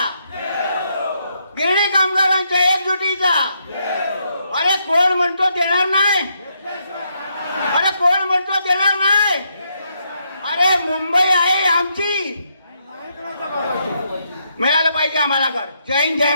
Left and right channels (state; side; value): inverted; both; correlation -0.77